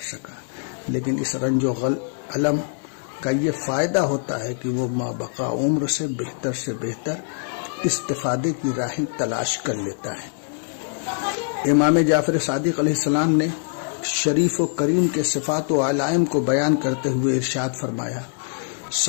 سکا۔ لیکن اس رنج و علم کا یہ فائدہ ہوتا ہے کہ وہ مابقا عمر سے بہتر استفادے کی راہیں تلاش کر لیتا ہے۔ امام جعفر صادق علیہ السلام نے شریف و کریم کے صفات و علائم کو بیان کرتے ہوئے ارشاد فرمایا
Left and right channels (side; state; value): right; silent; digital silence